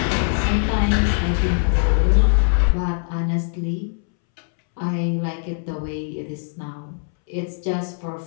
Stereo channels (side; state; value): right; silent; 65 dB below the other